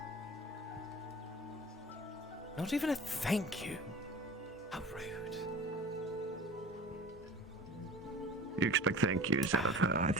Not even a thank you. How rude. You expect thank yous out of her. I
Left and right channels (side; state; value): both; normal; correlation 0.40